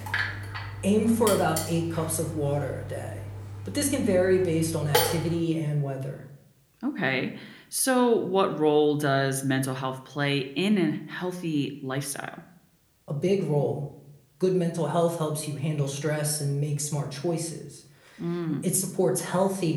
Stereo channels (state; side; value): identical; both; correlation 1.00